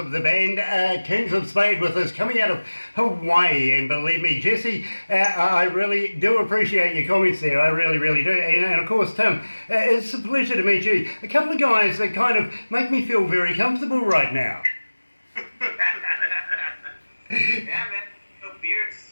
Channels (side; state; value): both; inverted; correlation -1.00